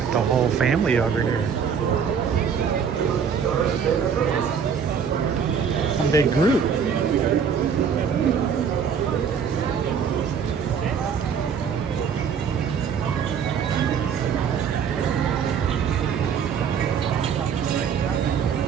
The whole family over here. One big group.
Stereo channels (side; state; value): left; quieter; 7.0 dB